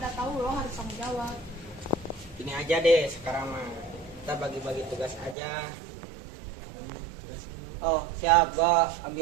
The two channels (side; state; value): left; drops out; at 5.4 s